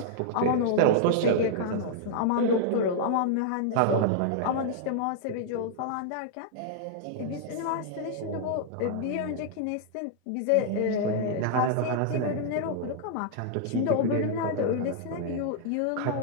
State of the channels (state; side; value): different; both; correlation -0.01